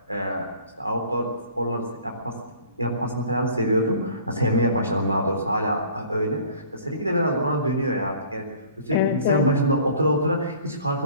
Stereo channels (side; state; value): both; inverted; correlation -0.49